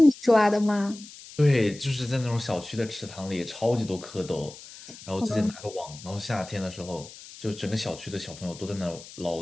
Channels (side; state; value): left; noise; hiss, 17 dB below the sound